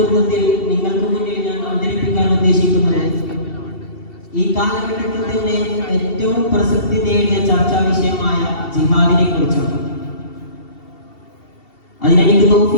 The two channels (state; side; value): late; right; 2.7 ms